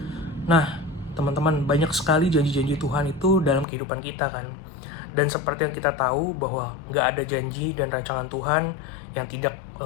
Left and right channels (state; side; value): drops out; right; at 3.7 s